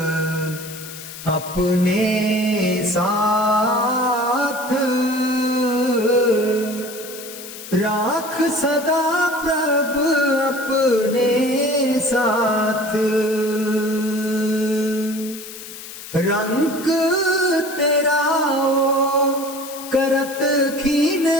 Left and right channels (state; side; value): noise; left; hiss, 13 dB below the sound